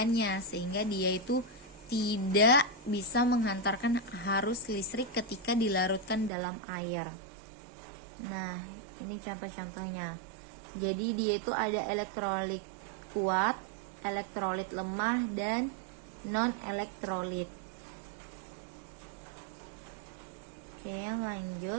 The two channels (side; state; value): left; drops out; at 6.3 s